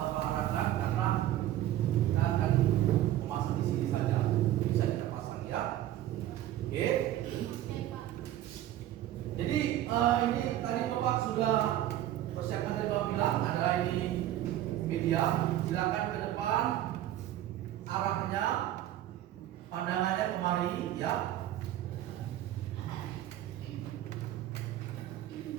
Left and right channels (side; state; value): left; quieter; 13.2 dB